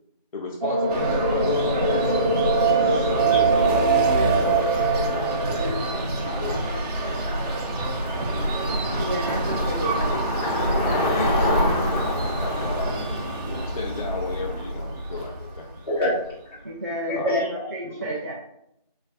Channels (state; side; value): inverted; both; correlation -0.41